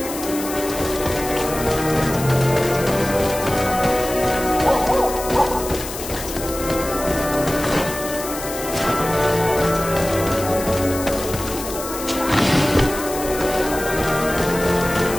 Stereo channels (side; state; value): left; noise; hiss, 9 dB below the sound